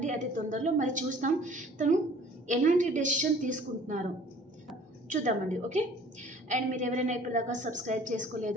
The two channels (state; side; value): normal; both; correlation 0.51